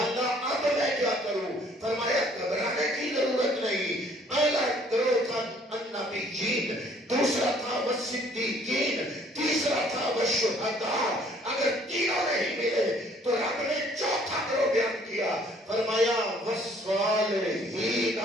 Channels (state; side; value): normal; both; correlation 0.60